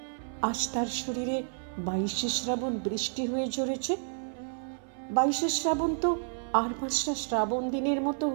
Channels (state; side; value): silent; left; 57 dB below the other